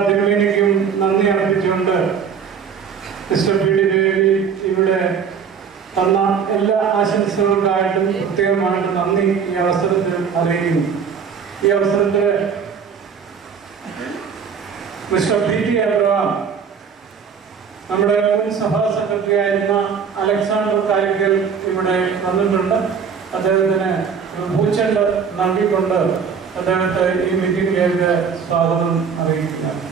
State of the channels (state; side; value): quieter; left; 6.6 dB